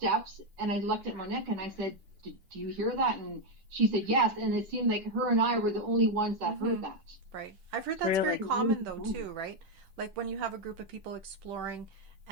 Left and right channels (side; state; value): left; late; 10 ms